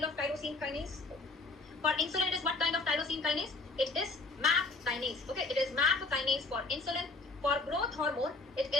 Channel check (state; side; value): quieter; right; 3.4 dB